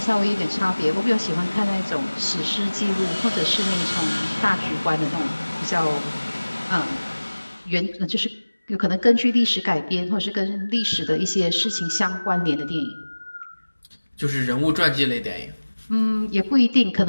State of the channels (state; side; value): inverted; both; correlation -1.00